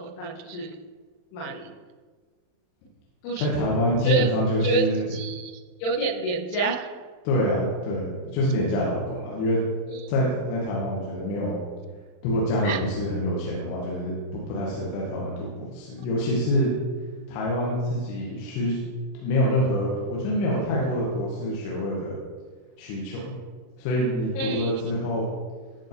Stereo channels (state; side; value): late; right; 40 ms